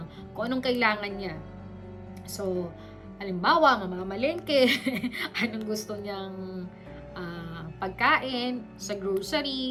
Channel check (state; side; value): identical; both; correlation 1.00